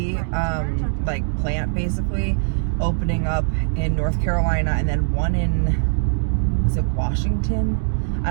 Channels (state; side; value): silent; left; digital silence